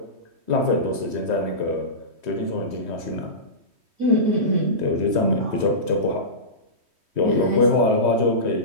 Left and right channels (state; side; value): late; left; 3.1 ms